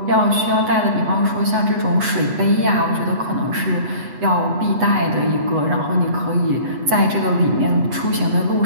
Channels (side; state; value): left; late; 8.0 ms